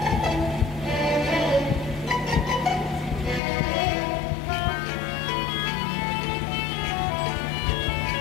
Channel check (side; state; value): right; drops out; at 3.4 s